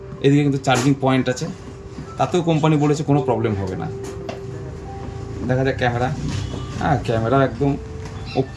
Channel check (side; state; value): both; identical; correlation 1.00